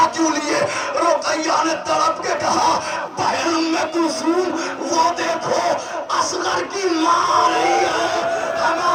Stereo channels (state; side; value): identical; both; correlation 1.00